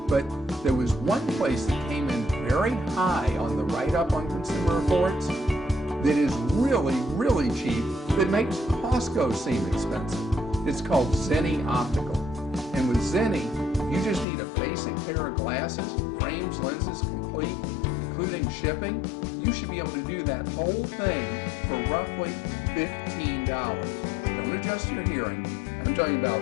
But there was one place that came in very high on the write-up on Consumer Reports that is really, really cheap that makes Costco seem expensive. It's called Zenni Optical. And with Zenni, you just need a basic pair of glasses, frames, lenses, complete, including shipping. You should be able to do that whole thing for roughly $15. Don't adjust your hearing. I'm talking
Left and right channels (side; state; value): right; drops out; at 14.2 s